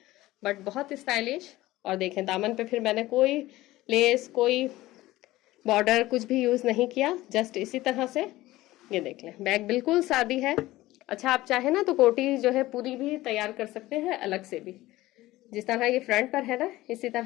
बट बहुत स्टाइलिश। और देखें, दामन पे फिर मैंने कोई लेस, कोई बॉर्डर कुछ भी यूज नहीं किया, जस्ट इसी तरह से। ये देख लें, बैक बिल्कुल सादी है। अच्छा, आप चाहे ना तो कोटी जो है पूरी भी तैयार कर सकते हैं अलग से भी, जिस तरह ये फ्रंट पर है ना, इसी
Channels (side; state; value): right; quieter; 17.3 dB